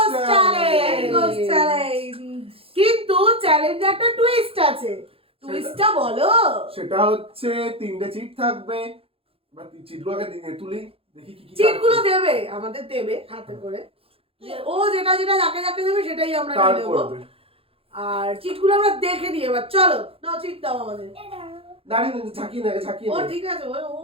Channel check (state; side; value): late; left; 0.27 ms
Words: চ্যালেঞ্জ, কিন্তু চ্যালেঞ্জে একটা টুইস্ট আছে। টুইস্টটা বলো। সেটা হচ্ছে 3টে চিট থাকবে। বা চিটগুলোকে তুলি, দেখি কি কি চিটগুলো দেবে, আমাদের দেবে হাতে করে। ও যেটা যেটা যাকে যাকে দেবে সেটাই আমরা নিয়ে নেব। আর চিটগুলো আমরা দেখে নিই। এবার চলো, নাও চিট দাও আমাদের। দাঁড়িয়ে ঝাঁকিয়ে নেবে, ঝাঁকিয়ে ও নেবে। ঠিক আছে, ও